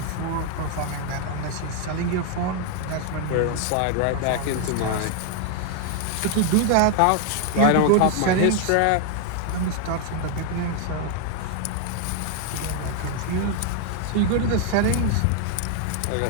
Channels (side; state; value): both; different; correlation 0.00